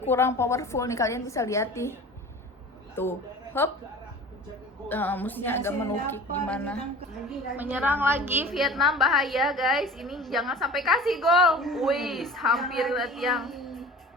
powerful nih, kalian bisa lihat nih tuh, hop, musuhnya agak menukik gimana. Menyerang lagi Vietnam, bahaya guys, ini jangan sampai kasih gol. Wih, hampir tiang.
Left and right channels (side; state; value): both; normal; correlation 0.40